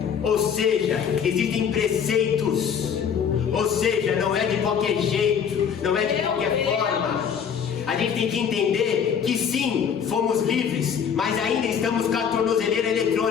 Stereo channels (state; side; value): quieter; right; 7.4 dB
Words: ou seja, existem preceitos, ou seja, não é de qualquer jeito, não é de qualquer forma. A gente tem que entender que sim, fomos livres, mas ainda estamos com a tornozeleira